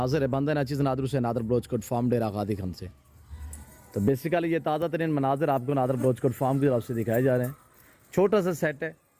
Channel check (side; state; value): both; identical; correlation 1.00